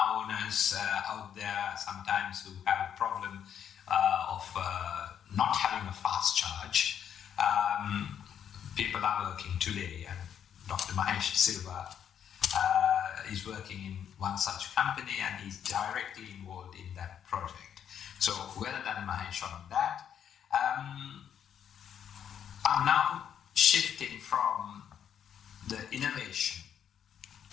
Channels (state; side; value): quieter; right; 8.9 dB